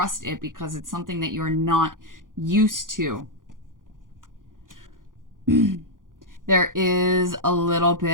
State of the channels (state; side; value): late; left; 0.89 ms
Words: it because it's something that you're not used to. There is a little